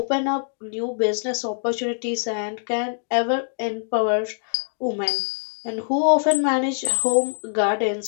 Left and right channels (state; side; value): silent; right; digital silence